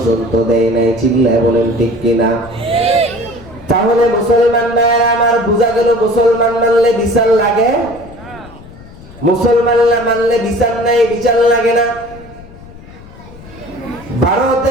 দেয় নাই। চিল্লায় বলেন ঠিক কিনা? তাহলে মুসলমান ভাইরা আমার, বোঝা গেল মুসলমান মানলে বিচার লাগে, মুসলমান না মানলে বিচার নাই, বিচার লাগে না।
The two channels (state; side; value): noise; left; rumble, 19 dB below the sound